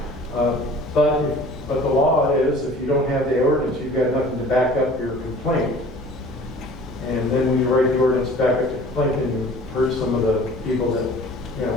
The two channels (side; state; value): both; normal; correlation 0.47